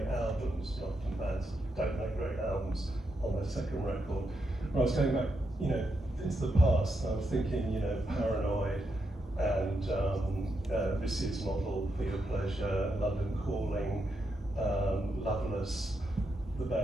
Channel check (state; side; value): normal; both; correlation 0.83